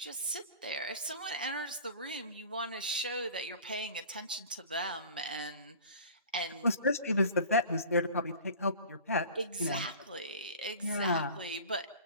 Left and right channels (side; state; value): both; inverted; correlation -0.41